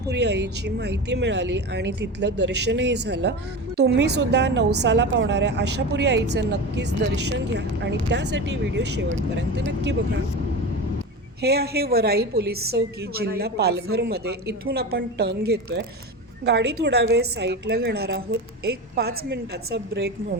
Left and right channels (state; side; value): normal; both; correlation 0.26